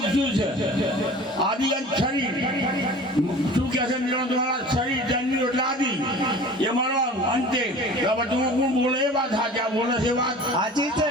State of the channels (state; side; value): normal; both; correlation 0.42